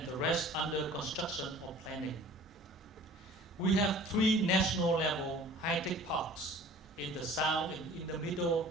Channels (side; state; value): both; normal; correlation 0.47